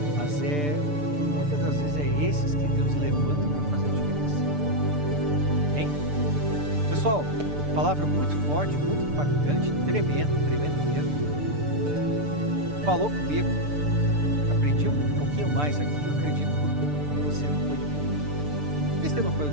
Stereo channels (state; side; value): late; left; 6.8 ms